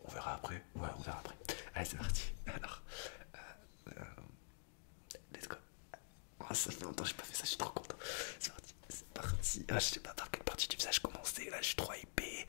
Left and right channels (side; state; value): right; silent; digital silence